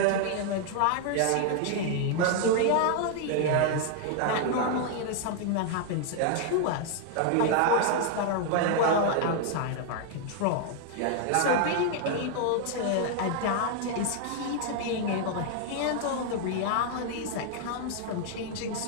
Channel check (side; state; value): both; different; correlation 0.00